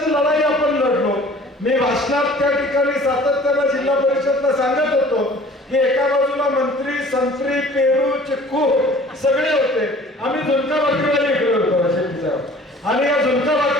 लढाई आपण लढलो. मी भाषणात त्या ठिकाणी सातत्यानं जिल्हा परिषदला सांगत होतो की एका बाजूला मंत्री, संत्री, पेरू, चिक्कू सगळे होते, आम्ही झुणका भाकरीवाले इकडे होतो शेट्टी साहेब, आणि या झुणका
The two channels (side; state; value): both; normal; correlation 0.49